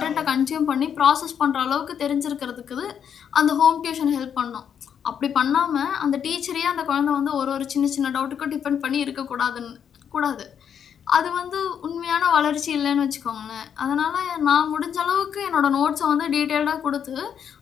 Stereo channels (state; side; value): quieter; right; 8.2 dB